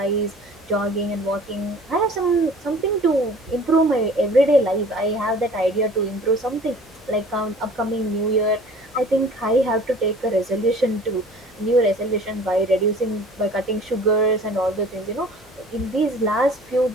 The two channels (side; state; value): both; normal; correlation 0.48